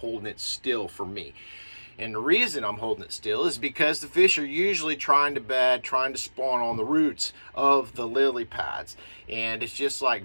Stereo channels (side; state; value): both; inverted; correlation -1.00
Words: it still for me. And the reason I'm holding it still is because the fish are usually trying to bed, trying to spawn on the roots of the lily pads. And it's just like